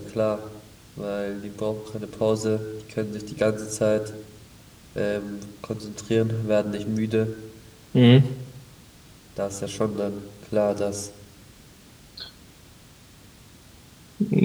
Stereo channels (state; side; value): identical; both; correlation 1.00